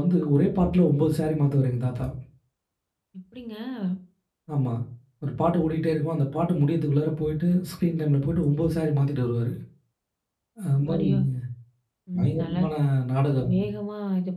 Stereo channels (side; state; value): both; identical; correlation 1.00